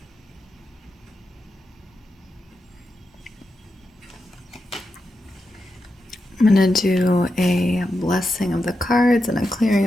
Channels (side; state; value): both; normal; correlation 0.88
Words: I'm going to do a blessing of the cards and a clearing